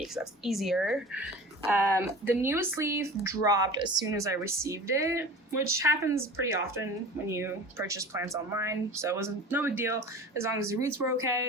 because that's easier. The newest leaf dropped as soon as I received it, which happens pretty often when you purchase plants online, so it wasn't no big deal as long as the roots were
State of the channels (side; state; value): both; normal; correlation 0.38